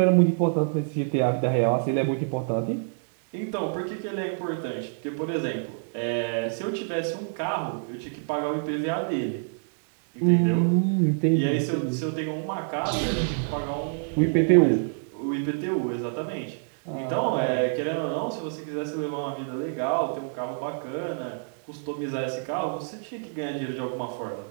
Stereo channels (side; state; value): left; silent; digital silence